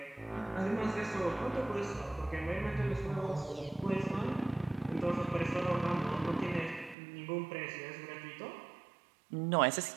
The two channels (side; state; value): left; drops out; at 7.0 s